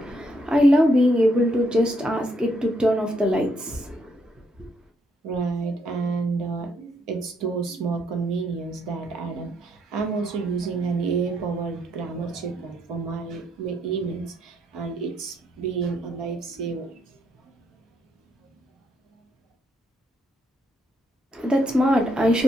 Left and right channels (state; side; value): normal; both; correlation 0.75